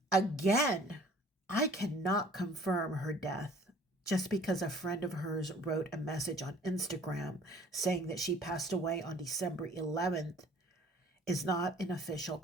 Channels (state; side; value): normal; both; correlation 0.53